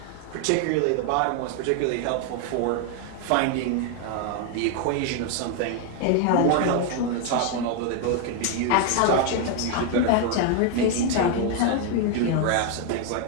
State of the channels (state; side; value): different; both; correlation 0.01